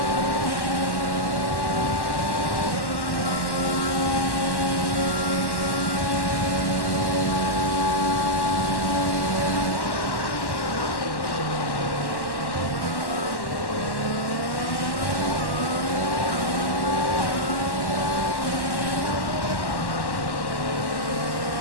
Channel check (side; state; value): right; late; 1.1 ms